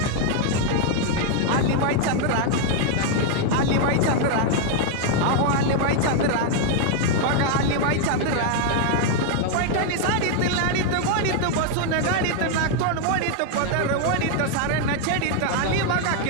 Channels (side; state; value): both; different; correlation 0.00